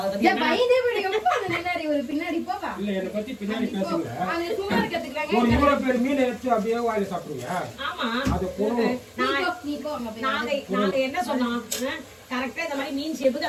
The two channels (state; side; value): identical; both; correlation 1.00